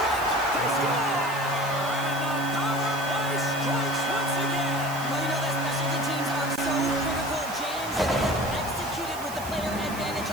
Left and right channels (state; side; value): noise; right; hiss, 15 dB below the sound